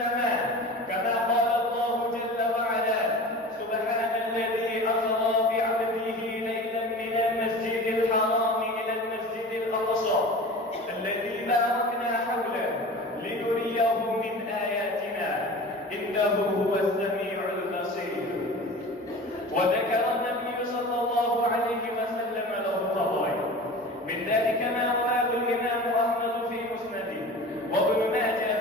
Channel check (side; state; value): both; normal; correlation 0.36